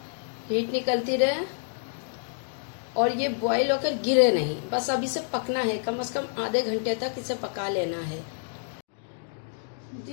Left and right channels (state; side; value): silent; right; digital silence